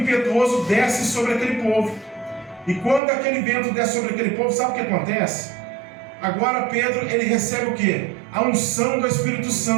desce sobre aquele povo. E quando aquele vento desce sobre aquele povo, sabe o que acontece? Agora Pedro, ele recebe o quê? A unção do Espírito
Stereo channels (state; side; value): drops out; left; at 3.0 s